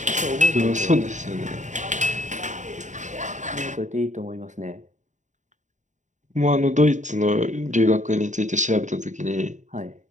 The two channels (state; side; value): late; left; 0.35 ms